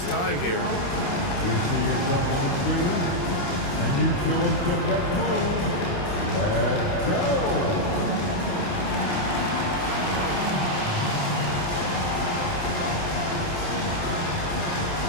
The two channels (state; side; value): late; right; 28 ms